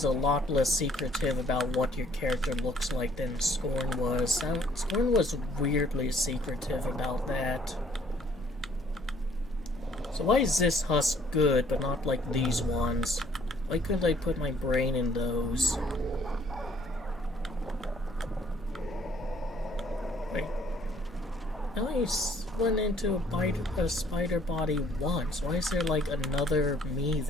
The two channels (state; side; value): normal; both; correlation 0.61